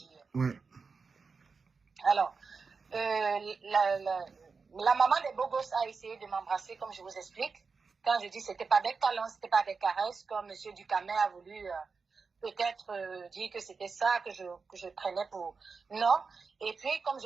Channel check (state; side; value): quieter; left; 4.9 dB